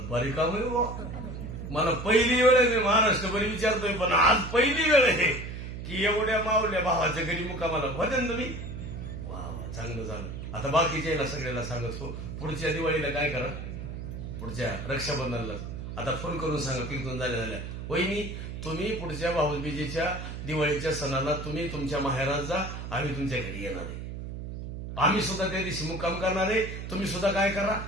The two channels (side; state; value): right; noise; hum, 7 dB below the sound